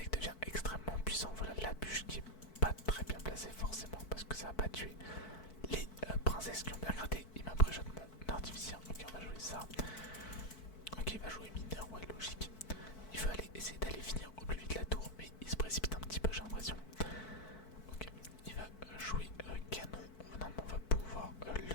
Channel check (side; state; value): right; late; 4.6 ms